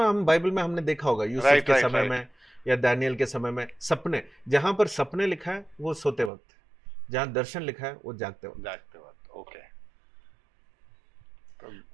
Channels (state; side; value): drops out; left; at 6.3 s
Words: हम बाइबल में हमने देखा होगा, यूसुफ के समय में या दानियल के समय में। सपने, जहां पर सपने लिखा है वो सोते वक्त, जहां दर्शन लिखा है वो जागते वक्त। ओके।